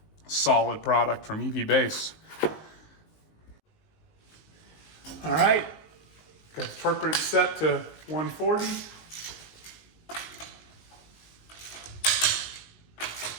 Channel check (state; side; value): late; right; 19 ms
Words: solid product from EV base. All right, got the torque wrench set to 140.